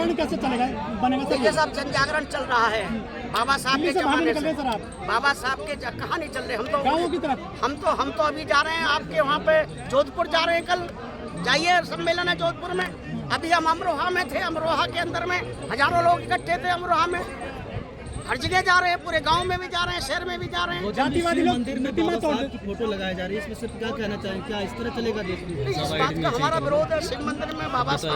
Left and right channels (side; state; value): both; identical; correlation 1.00